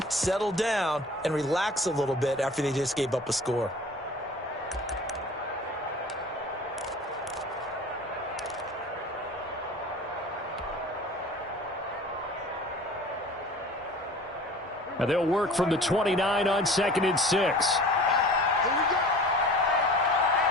settle down, and relax a little bit after they just gave up a score. And they'll work from the 29 on 2nd and 6.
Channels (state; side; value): normal; both; correlation 0.43